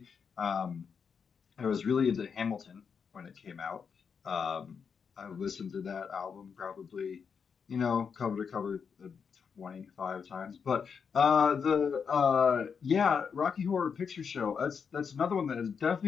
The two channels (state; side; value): quieter; right; 6.3 dB